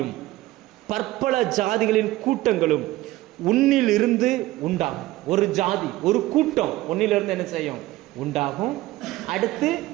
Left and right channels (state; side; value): quieter; left; 17.2 dB